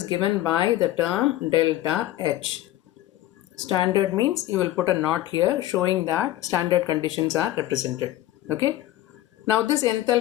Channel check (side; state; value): right; quieter; 14.7 dB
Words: given by the term delta H. Standard means you will put a knot here showing that standard conditions are represented. Okay. Now this